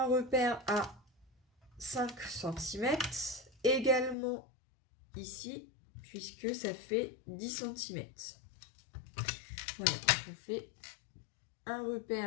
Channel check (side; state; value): right; drops out; at 4.2 s